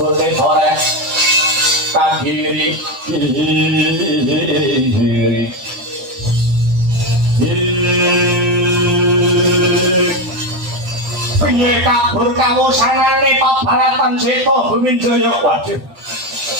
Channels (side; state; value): left; late; 10 ms